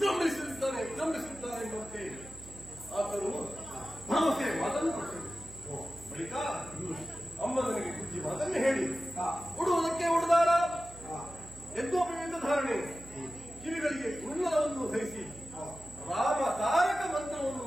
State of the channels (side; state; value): right; noise; hum, 17 dB below the sound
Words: ಎಂಬಂತೆ ಆತನು ಭರವಸೆ ಮಾತನ್ನು ಕೊಟ್ಟರು. ಬಳಿಕ ಅಮ್ಮ ನನಗೆ ಬುದ್ಧಿ ಮಾತನ್ನು ಹೇಳಿ ಉಡುವುದಕ್ಕೆ ಉಡುದಾರ ಯಜ್ಞೋಪವಿಂದ ಧಾರಣೆ ಕಿವಿಗಳಿಗೆ ಕುಂಡಲವನ್ನು ಧರಿಸಿ ರಾಮ ತಾರಕ ಮಂತ್ರವನ್ನು